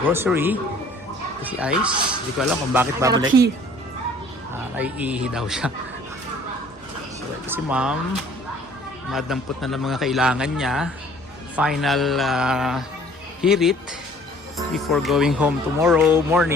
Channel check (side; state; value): both; normal; correlation 0.54